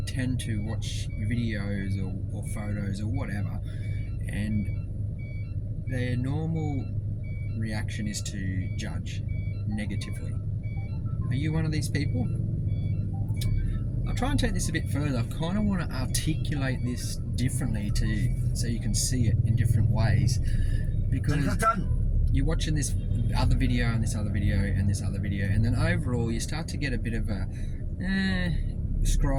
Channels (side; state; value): both; identical; correlation 1.00